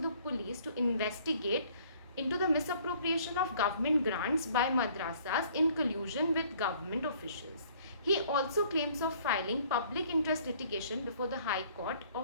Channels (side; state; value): both; inverted; correlation -0.58